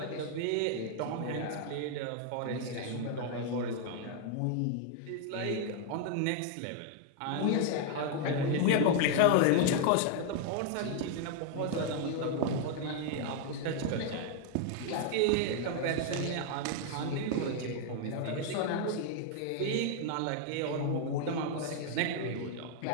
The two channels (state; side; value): different; both; correlation 0.00